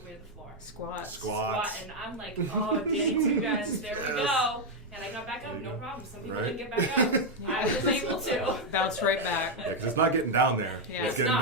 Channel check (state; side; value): normal; both; correlation 0.02